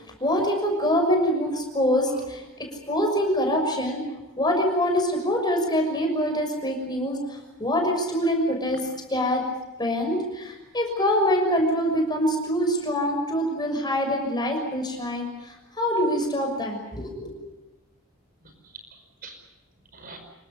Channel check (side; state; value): both; normal; correlation 0.35